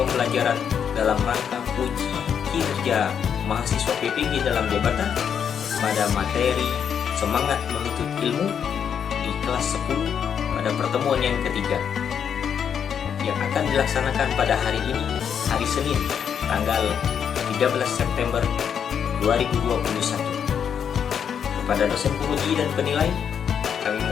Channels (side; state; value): right; quieter; 7.9 dB